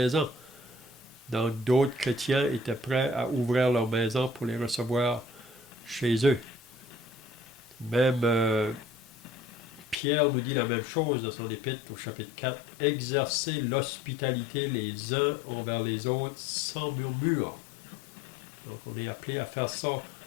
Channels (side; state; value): right; drops out; at 10.0 s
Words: Donc d'autres chrétiens étaient prêts à ouvrir leur maison pour les recevoir chez eux. Même Pierre nous dit la même chose dans son épître au chapitre 4. Exercez l'hospitalité les uns envers les autres sans murmure. Donc on est appelé à faire ça